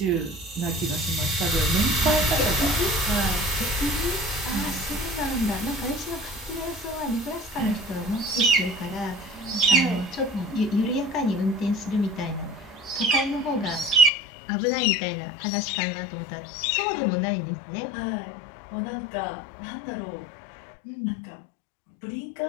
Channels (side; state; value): right; drops out; at 14.1 s